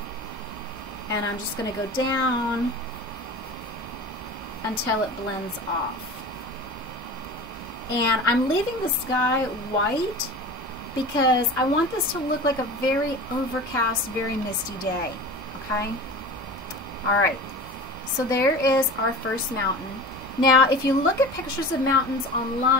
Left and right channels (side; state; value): both; normal; correlation 0.34